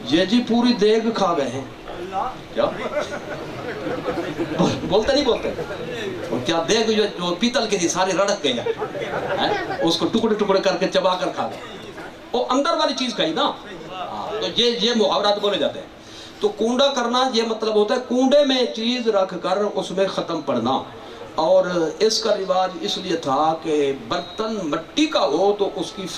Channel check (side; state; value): both; identical; correlation 1.00